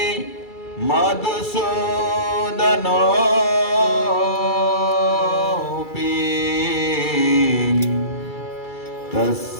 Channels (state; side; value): late; right; 2.3 ms